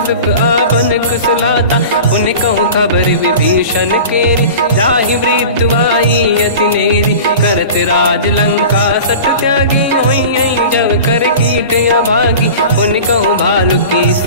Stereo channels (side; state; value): both; inverted; correlation -0.36